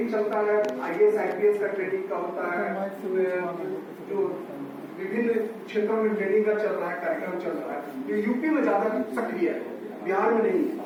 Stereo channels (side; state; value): both; identical; correlation 1.00